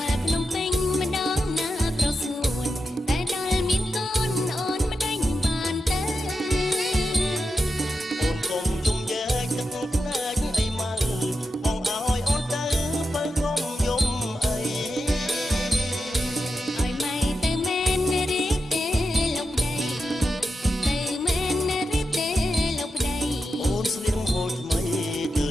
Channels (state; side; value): normal; both; correlation 0.89